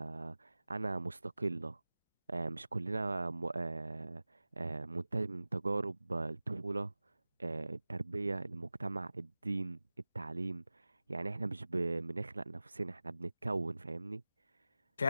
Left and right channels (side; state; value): both; inverted; correlation -0.97